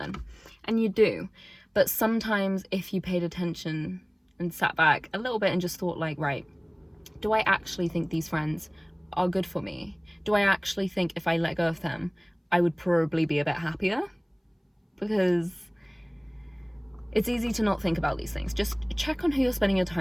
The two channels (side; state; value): both; identical; correlation 1.00